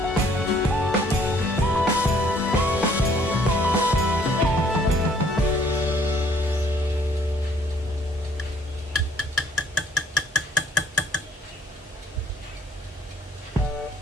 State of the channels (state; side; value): normal; both; correlation 0.62